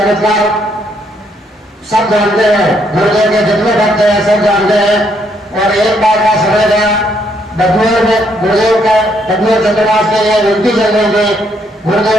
सब जानते हैं। गुरुदेव के जितने भक्त हैं सब जानते हैं। और एक बार का समय था बदनूर में गुरुदेव का बदनूर चंद्रवास के लिए विनती चल रही थी, गुरुदेव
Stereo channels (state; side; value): normal; both; correlation 0.72